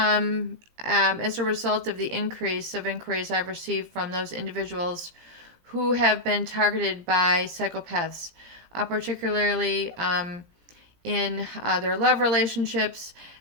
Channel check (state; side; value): late; left; 17 ms